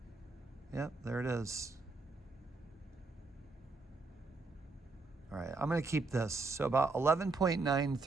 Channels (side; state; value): left; quieter; 3.7 dB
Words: Yep, there it is. All right, I'm going to keep this. So about